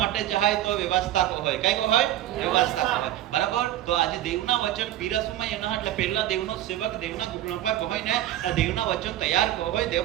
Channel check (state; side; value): quieter; left; 13.4 dB